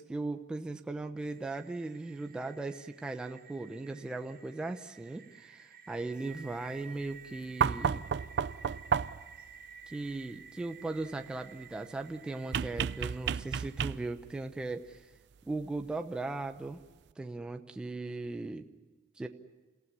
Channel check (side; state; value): left; quieter; 4.3 dB